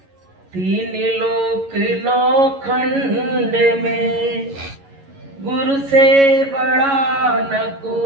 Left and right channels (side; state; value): left; late; 11 ms